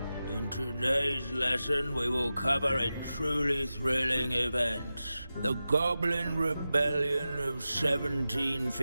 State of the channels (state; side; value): inverted; both; correlation -0.93